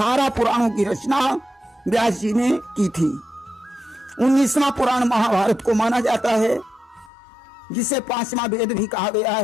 पुराणों की रचना व्यास जी ने की थी। 19वां पुराण महाभारत को माना जाता है, जिसे 5वां वेद भी कहा गया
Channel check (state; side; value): drops out; right; at 7.1 s